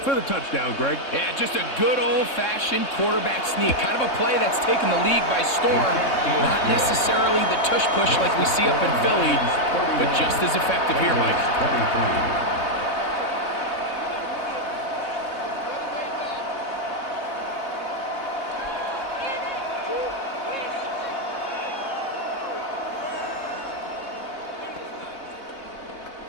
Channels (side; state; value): right; late; 3.7 ms